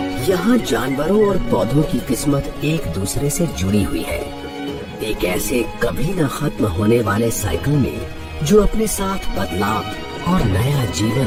यहाँ जानवरों और पौधों की किस्मत एक दूसरे से जुड़ी हुई है, एक ऐसे कभी न खत्म होने वाले साइकिल में जो अपने साथ बदलाव और नया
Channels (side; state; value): both; identical; correlation 1.00